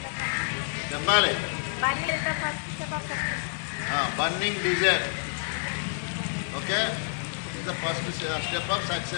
చెప్పాలి. Burning desire okay is the first step of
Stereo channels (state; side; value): silent; right; digital silence